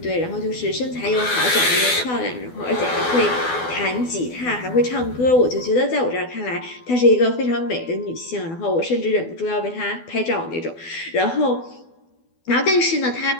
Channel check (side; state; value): right; late; 12 ms